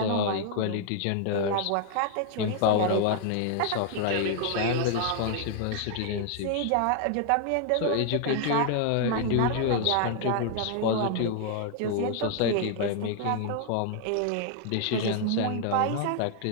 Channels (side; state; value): both; different; correlation 0.00